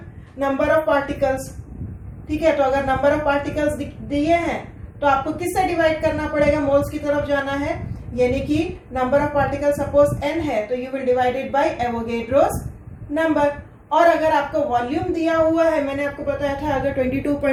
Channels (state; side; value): identical; both; correlation 1.00